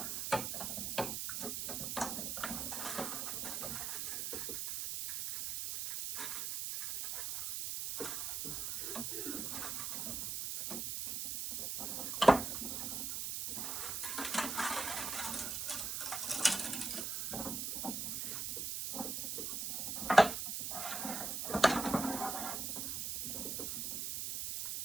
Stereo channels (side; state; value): right; noise; hiss, 2 dB below the sound